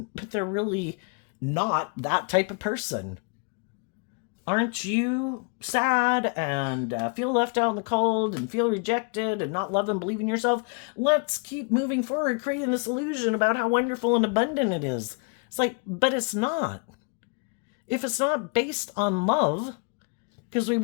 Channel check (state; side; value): quieter; right; 35.0 dB